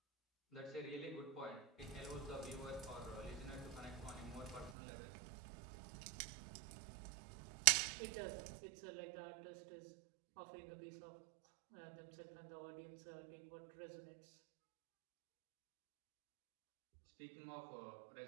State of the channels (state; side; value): drops out; left; at 4.7 s